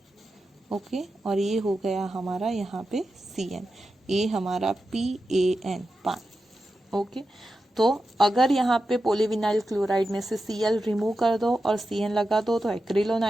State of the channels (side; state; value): both; normal; correlation 0.90